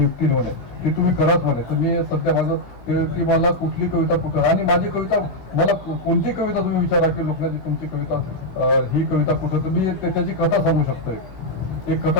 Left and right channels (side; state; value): right; late; 16 ms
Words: म्हणे, ते तुम्ही कराच म्हणे. तर मी सध्या माझं की मला कुठली कविता कुठं, आणि माझी कविता, मला कोणती कविता तुम्ही विचारा की लोकांची तुमची कविता ही कविता कुठं, तर मी त्याची कथा सांगू शकतो, एक